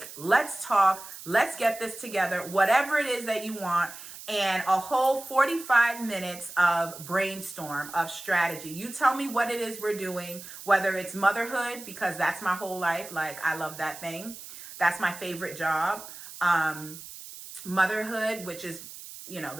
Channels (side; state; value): right; noise; hiss, 14 dB below the sound